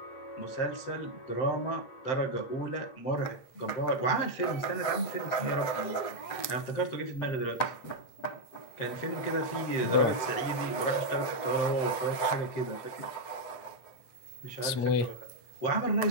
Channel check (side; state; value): right; late; 8.0 ms